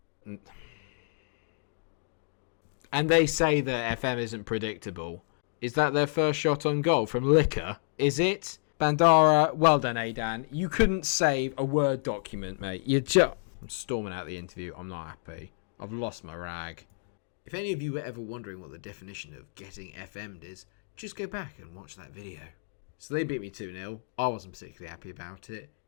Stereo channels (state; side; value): silent; right; digital silence